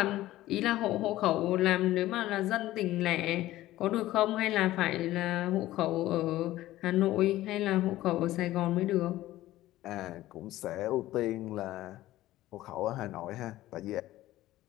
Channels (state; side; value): quieter; right; 15.6 dB